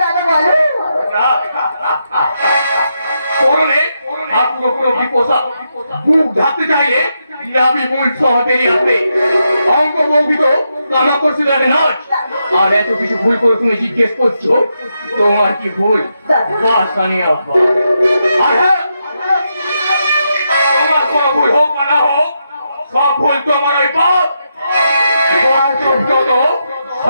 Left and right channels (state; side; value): inverted; both; correlation -0.83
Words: দাদা বলো করলে আর পুরো বিপোষা বুক ঢাকতে চাইলে নাবি মূল সহ বেরিয়ে আসবে অঙ্ক বৌগিত কামা করছে তাদের নাচ আর এত কিছু ভুল করে তুমি জিজ্ঞেস করছো তোমার কি ভুল বাস জানিয়ে আর হ্যাঁ তোমার কোনো ভুল হোক বা না হোক সব ভুল তোমার ওই বাপ যত